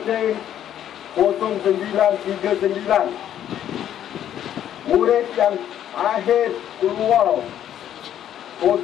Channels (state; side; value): quieter; right; 10.7 dB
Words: 0939. Murid yang akhir keluar